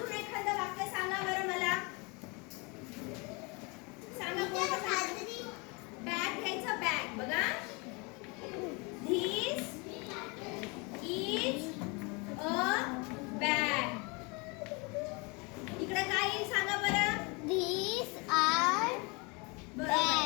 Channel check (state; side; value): quieter; right; 29.5 dB